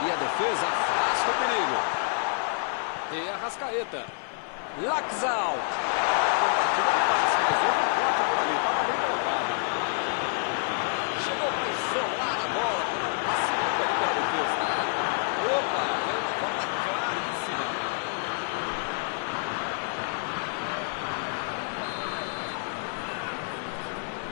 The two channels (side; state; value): right; silent; 59 dB below the other